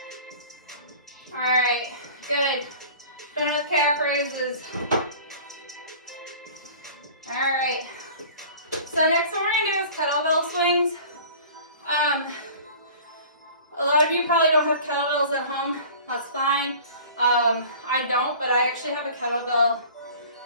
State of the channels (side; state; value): both; inverted; correlation -0.43